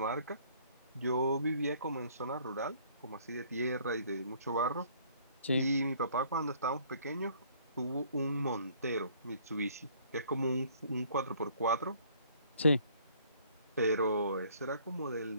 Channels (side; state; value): both; inverted; correlation -0.59